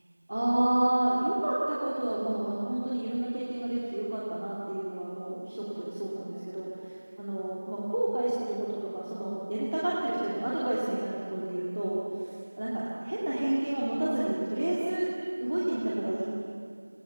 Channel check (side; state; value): both; inverted; correlation -1.00